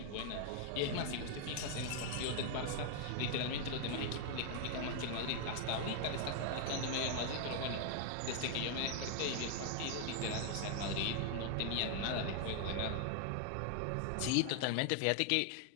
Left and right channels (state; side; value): different; both; correlation 0.00